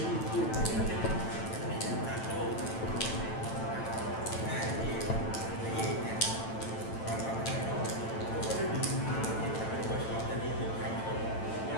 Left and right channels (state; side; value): late; right; 9.0 ms